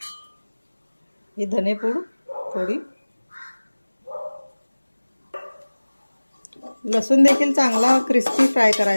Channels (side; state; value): both; inverted; correlation -1.00